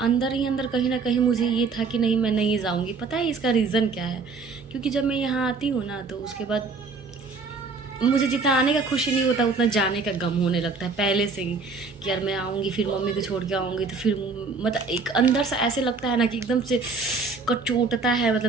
ही अंदर कहीं ना कहीं मुझे ये था कि नहीं मैं नहीं जाऊँगी। पता है इसका रीज़न क्या है? क्योंकि जब मैं यहाँ आती हूँ ना, तो उसके बाद मुझे जितना आने का खुशी नहीं होता उतना जाने का गम होने लगता है पहले से ही, कि यार मैं आऊँगी फिर मम्मी को छोड़ के आऊँगी, तो फिर मतलब एक अंदर से ऐसे लगता है ना कि एकदम से कचोटता है।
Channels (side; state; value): left; quieter; 4.5 dB